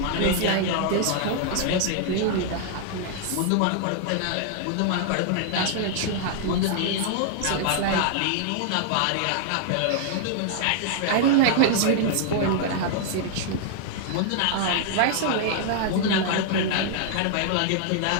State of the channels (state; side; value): different; both; correlation 0.00